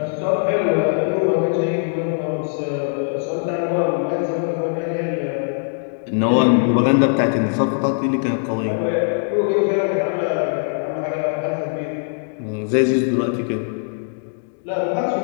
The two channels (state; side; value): silent; right; digital silence